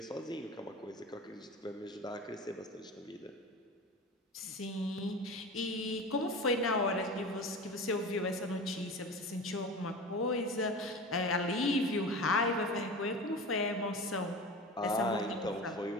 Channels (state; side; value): normal; both; correlation 0.32